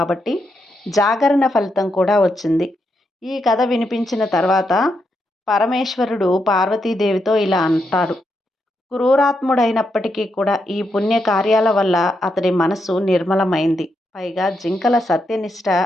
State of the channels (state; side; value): normal; both; correlation 0.82